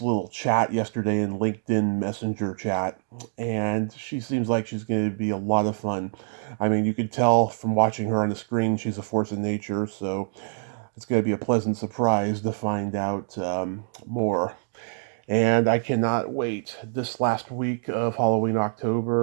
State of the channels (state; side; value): silent; left; digital silence